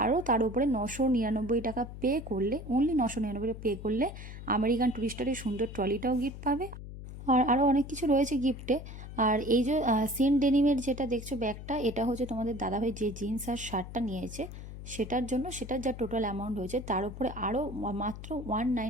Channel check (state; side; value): noise; left; hum, 11 dB below the sound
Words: আরও তার উপরে 999 টাকা পে করলে, অনলি 999 পে করলে আমেরিকান টুরিস্টারের সুন্দর ট্রলিটাও গিফট পাবে। আর আরও অনেক কিছু রয়েছে গিফটে। আর এই যে সিন ডেনিমের যেটা দেখছো ব্যাগটা, এটা হচ্ছে তোমাদের দাদাভাই যে জিন্স আর শার্টটা নিয়েছে সেটার জন্য, সেটার যা টোটাল অ্যামাউন্ট হয়েছে তার উপরে আরও মাত্র